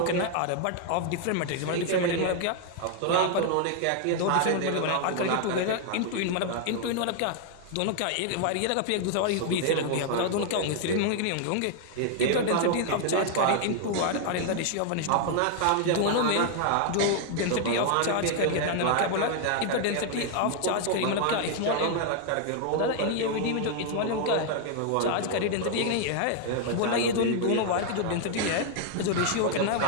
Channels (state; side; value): different; both; correlation 0.00